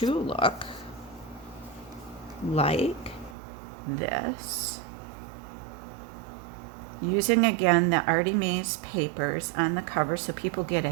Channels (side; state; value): left; drops out; at 3.4 s